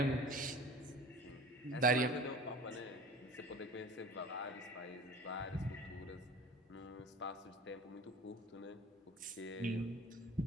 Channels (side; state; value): both; normal; correlation 0.40